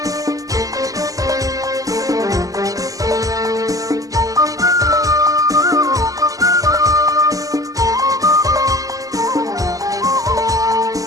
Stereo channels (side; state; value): left; late; 0.17 ms